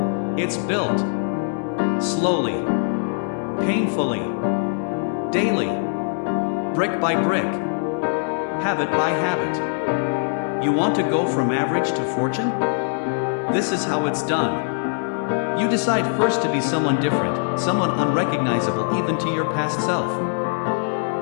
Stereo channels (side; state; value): right; silent; digital silence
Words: It's built slowly, painfully, daily, brick by brick, habit by habit. You want to go from average to fortune? This is how it's done. You decide first to be someone different, someone unrecognizable even to your past self.